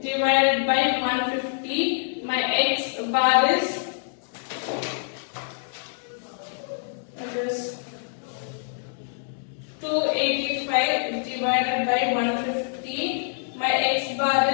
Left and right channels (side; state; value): right; silent; digital silence